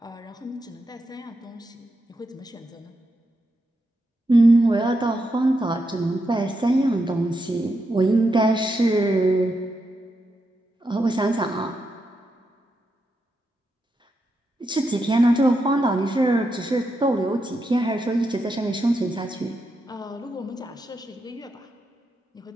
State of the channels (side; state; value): both; normal; correlation 0.84